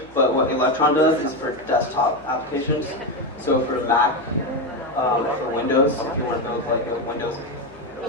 but what Electron does is for desktop applications. So for Mac, for Windows, if you want to build like a Windows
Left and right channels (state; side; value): noise; left; hum, 25 dB below the sound